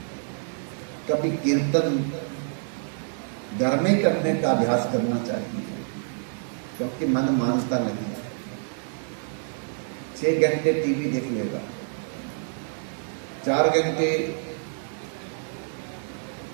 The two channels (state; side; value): silent; left; digital silence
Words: कभी कीर्तन घर में करने का अभ्यास करना चाहिए, क्योंकि मन मानता नहीं। 6 घंटे टीवी देख लेगा, 4 घंटे